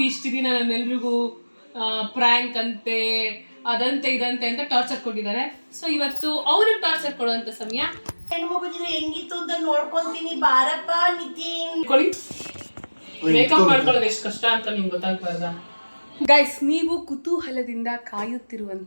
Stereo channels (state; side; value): inverted; both; correlation -1.00